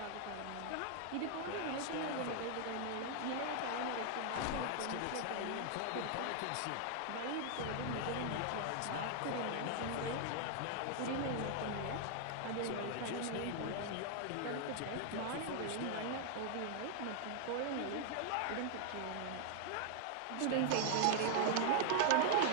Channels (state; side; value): different; both; correlation 0.00